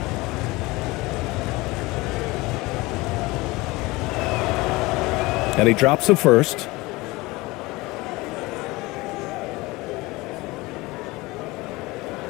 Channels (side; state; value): right; quieter; 21.9 dB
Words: And he drops the first.